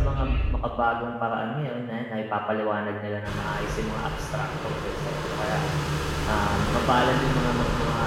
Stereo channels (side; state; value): both; identical; correlation 1.00